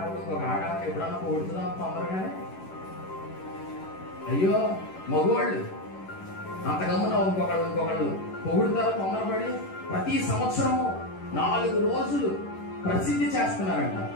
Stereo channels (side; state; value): right; late; 11 ms